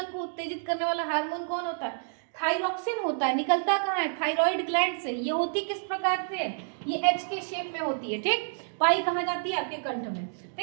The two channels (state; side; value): silent; left; digital silence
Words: को उत्तेजित करने वाला हार्मोन कौन होता है, थायरॉक्सिन होता है। निकलता कहाँ है, थायराइड ग्लैंड से। ये होती किस प्रकार से, ये एच के शेप में होती है, ठीक। पाई कहाँ जाती है, आपके कंठ में,